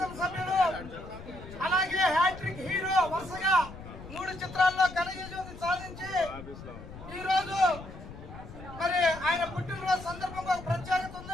అలాగే హ్యాట్రిక్ హీరో, వరుసగా 3 చిత్రాల్లో ఘన విజయం సాధించి ఈ రోజు మరి ఆయన పుట్టిన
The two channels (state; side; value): noise; left; rumble, 14 dB below the sound